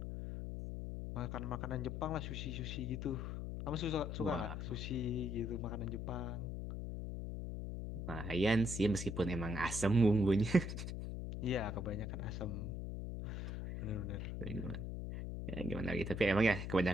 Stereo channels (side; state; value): left; noise; hum, 4 dB below the sound